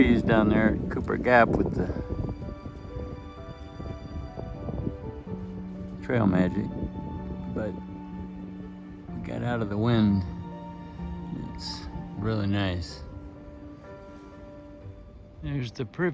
down there at Cooper Gap with the trail magic, but we got out of the wind. It's really nice. There's the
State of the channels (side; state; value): both; identical; correlation 1.00